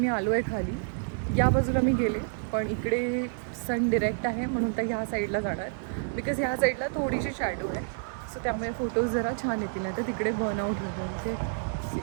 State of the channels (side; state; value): left; silent; 59 dB below the other